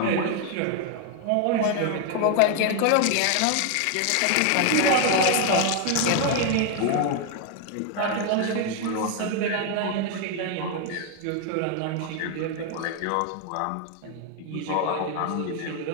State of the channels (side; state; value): both; different; correlation 0.01